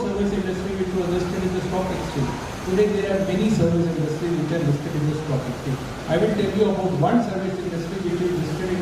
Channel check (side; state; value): both; identical; correlation 1.00